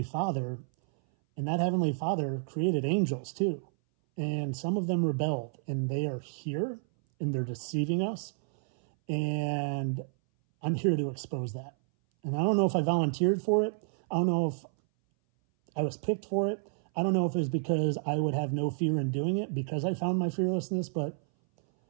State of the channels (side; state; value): left; silent; 58 dB below the other